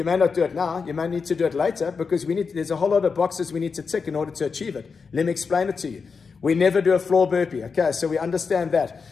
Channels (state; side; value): quieter; right; 5.2 dB